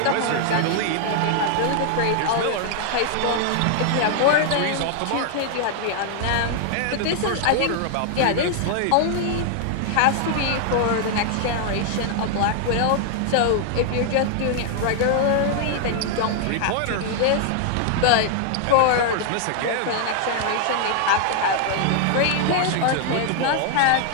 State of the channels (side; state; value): both; different; correlation 0.00